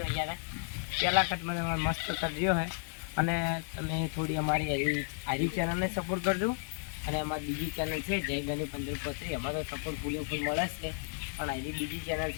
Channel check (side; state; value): right; silent; 56 dB below the other